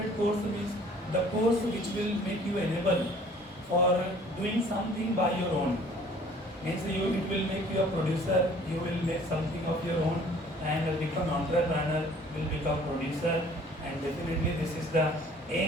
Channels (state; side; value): normal; both; correlation 0.53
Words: course means the course which will make you enable for doing something by your own. Means it will make you a producer, you will make something of your own, and become entrepreneur, will become producer, and definitely this is the